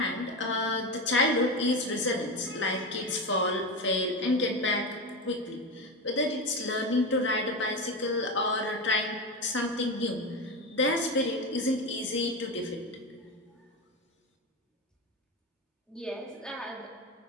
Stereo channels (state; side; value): normal; both; correlation 0.19